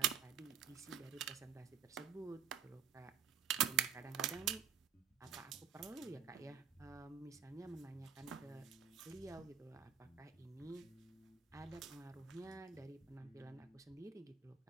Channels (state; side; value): quieter; left; 7.8 dB